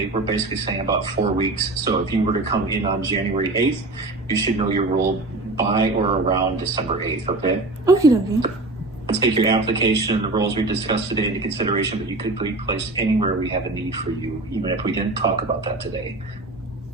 We're basically saying about 4 weeks. So if you were to come in on January 8th, you should know your role by or around December 8th, okay? Okay. Let's take your application and the roles we discussed today into consideration, but you could be placed anywhere we have a need for you, even if we didn't talk about that today.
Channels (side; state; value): left; quieter; 3.0 dB